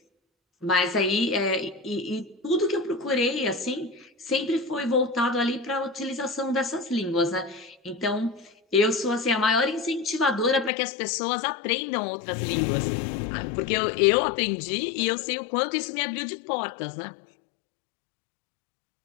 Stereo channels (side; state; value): right; drops out; at 10.7 s